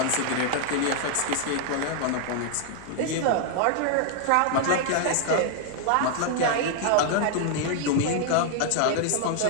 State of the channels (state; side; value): different; both; correlation 0.00